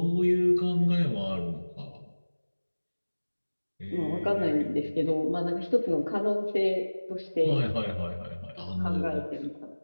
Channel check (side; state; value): both; inverted; correlation -1.00